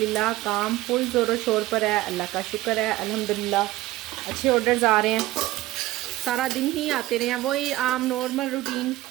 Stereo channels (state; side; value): quieter; left; 17.1 dB